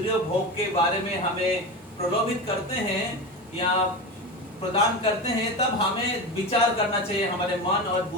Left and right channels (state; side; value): normal; both; correlation 0.24